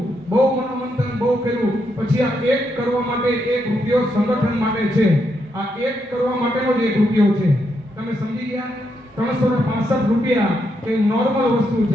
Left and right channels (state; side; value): normal; both; correlation 0.80